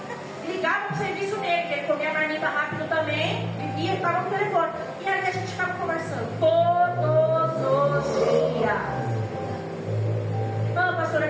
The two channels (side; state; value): both; identical; correlation 1.00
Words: Ligava pro serviço dele, que ele comia a marmita rápido também, vivia e estava no telefone. E aí a gente ficava conversando todos os dias. Não, pastora,